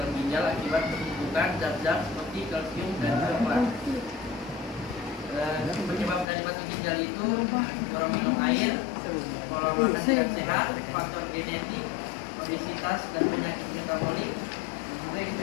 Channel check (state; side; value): drops out; right; at 6.2 s